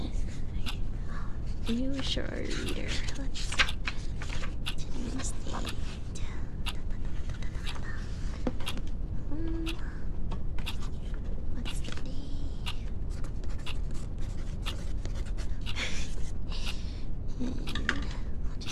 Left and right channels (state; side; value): identical; both; correlation 1.00